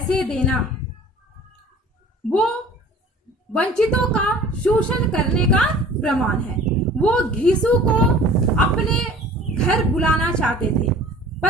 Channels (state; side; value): normal; both; correlation 0.46